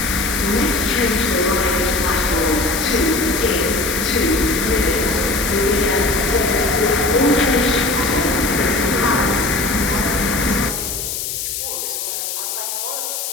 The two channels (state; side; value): noise; left; hiss, 4 dB below the sound